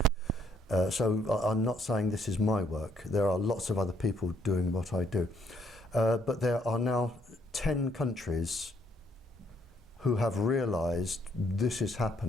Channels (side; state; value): both; normal; correlation 0.68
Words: So I'm not saying this is my work. There are lots of other people doing what I do. But there are now 10 countries who have realized this is